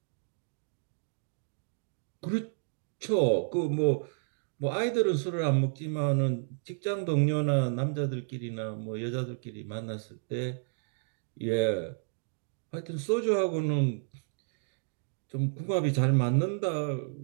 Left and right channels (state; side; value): silent; left; digital silence